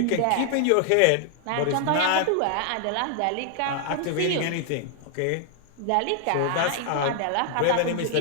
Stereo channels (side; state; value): both; different; correlation 0.00